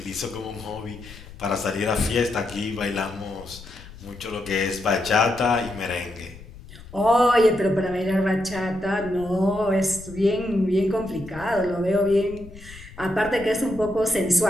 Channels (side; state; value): left; noise; rumble, 17 dB below the sound